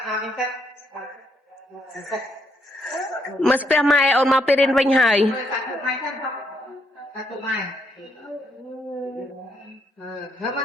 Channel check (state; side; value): normal; both; correlation 0.75